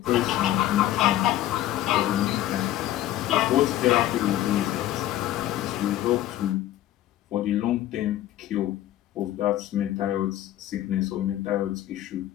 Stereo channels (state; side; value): quieter; right; 13.4 dB